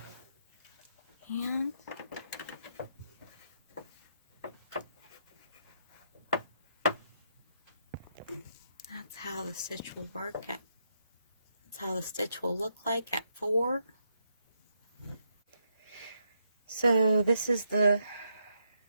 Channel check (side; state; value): both; inverted; correlation -0.79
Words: And that's how the stitch will work. That's how the stitch will look like at 4. So this is the